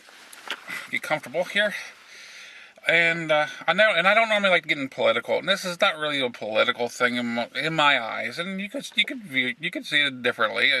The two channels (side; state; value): both; identical; correlation 1.00